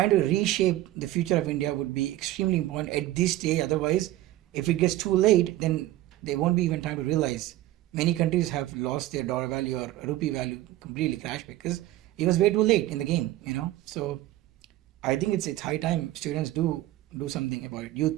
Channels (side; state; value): left; quieter; 15.4 dB